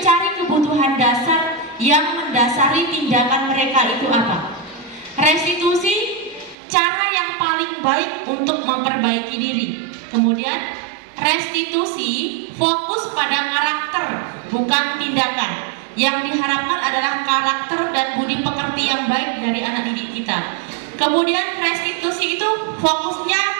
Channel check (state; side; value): drops out; left; at 6.6 s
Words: kebutuhan dasar yang mendasari tindakan mereka itu apa. Restitusi cara yang paling baik untuk memperbaiki diri. Kemudian restitusi fokus pada karakter, bukan tindakan. Yang diharapkan adalah karakter dan budi pekerti yang baik dari anak didik kita. Kemudian restitusi itu fokusnya